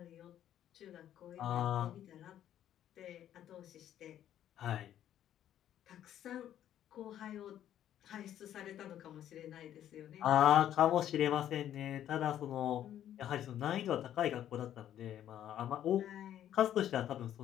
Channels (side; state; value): right; quieter; 11.2 dB